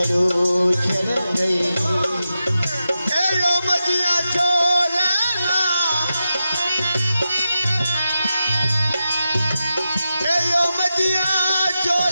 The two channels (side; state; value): both; inverted; correlation -0.90